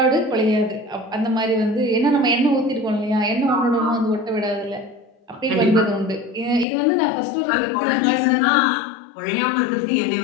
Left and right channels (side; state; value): right; drops out; at 6.7 s